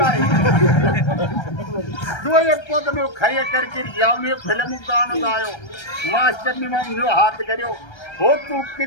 बारे दो एक पद में खाइए करके यावनी फिल्म को गानों गायो। मास्टर ने मांग हाथ करो हो तू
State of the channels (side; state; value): right; late; 1.3 ms